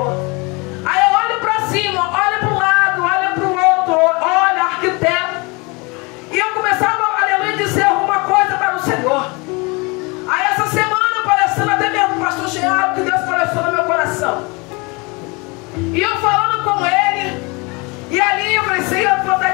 Aí eu olho para cima, olho para um lado, olho para o outro, olho arquiteto. E eu começava, aleluia, dizer alguma coisa para o Senhor. Aí essa semana, parecendo até mesmo o pastor Geraldo, que Deus pareceu no meu coração. E eu falando com ele, e ali eu falei, Senhor, eu vou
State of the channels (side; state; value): right; quieter; 28.0 dB